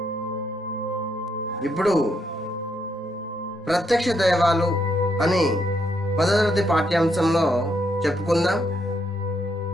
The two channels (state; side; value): normal; both; correlation 0.76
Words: ఇప్పుడు ప్రత్యక్ష దైవాలు అని 10వ తరగతి పాఠ్యాంశంలో చెప్పుకుందాం.